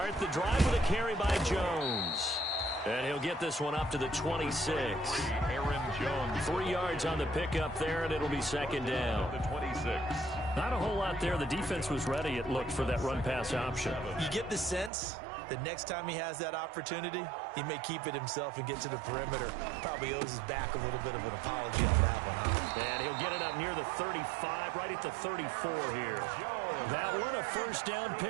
the drive with a carry by Jones. And he'll get this one up to the 26. Aaron Jones. 3 yards on the pickup there, and it'll be 2nd down. The 26. Not a whole lot there. The defense was ready, it looked, for that run-pass option. You get the sense that next time he has that opportunity, he may keep it himself and get to the perimeter. Probably owes his back a little bit of an apology on that one, huh? And he'll get it up near the 35, right at the 34 here. That one, a first down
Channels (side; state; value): left; drops out; at 14.9 s